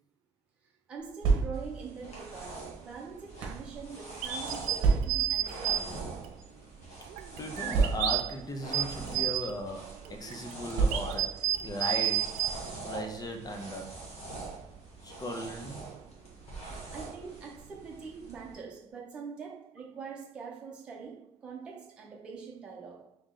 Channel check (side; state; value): left; quieter; 5.4 dB